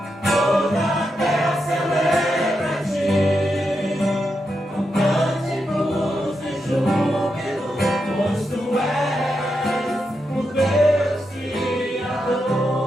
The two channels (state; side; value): normal; both; correlation 0.85